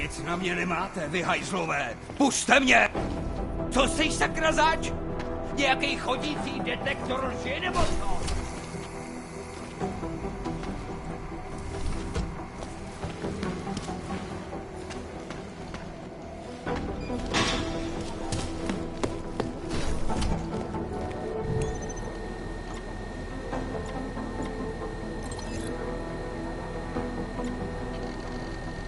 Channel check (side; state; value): both; identical; correlation 1.00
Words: na mě nemáte, vy hajzlové! Pusťte mě! Co jsi sakra zač? Nějaký chodící detektor lži nebo co?